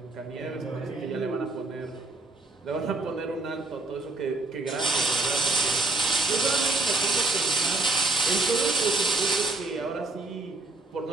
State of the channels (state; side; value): quieter; left; 3.2 dB